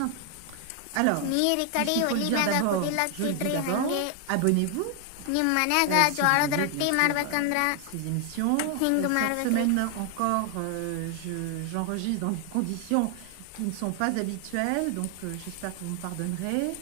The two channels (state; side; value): different; both; correlation 0.00